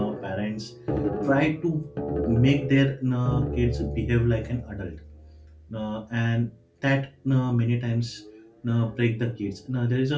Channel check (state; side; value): identical; both; correlation 1.00